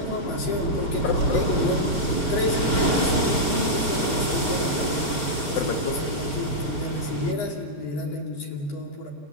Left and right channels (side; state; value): right; late; 6.5 ms